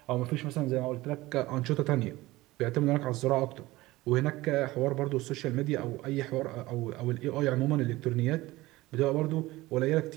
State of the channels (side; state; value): left; quieter; 18.9 dB